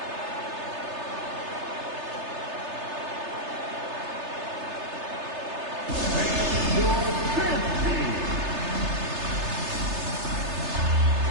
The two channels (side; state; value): left; late; 3.3 ms